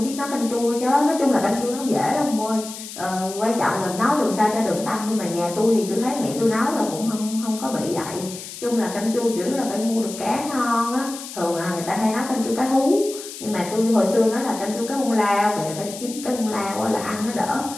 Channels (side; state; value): left; noise; hiss, 12 dB below the sound